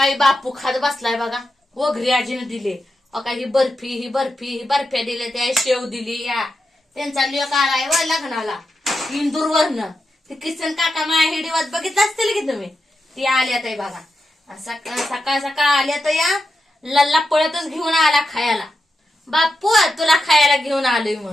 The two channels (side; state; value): both; normal; correlation 0.88